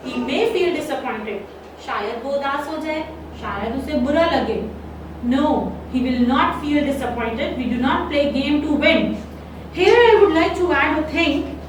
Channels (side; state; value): both; identical; correlation 1.00